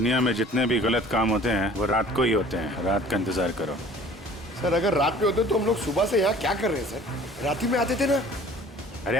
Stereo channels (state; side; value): normal; both; correlation 0.49